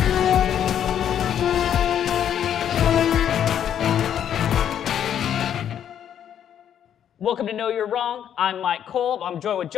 Welcome to Know You're Wrong. I'm Mike Kolb. I'm joined with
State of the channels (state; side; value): quieter; right; 9.5 dB